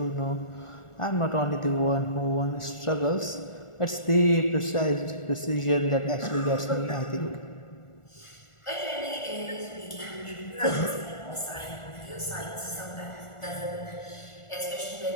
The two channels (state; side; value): late; right; 1.4 ms